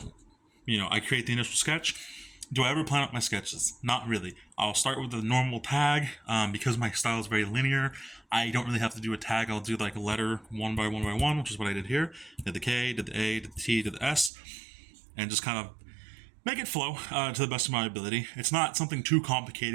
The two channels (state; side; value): drops out; left; at 14.3 s